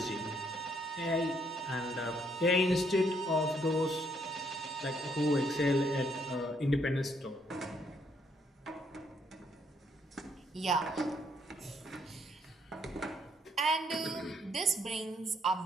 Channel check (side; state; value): both; normal; correlation 0.71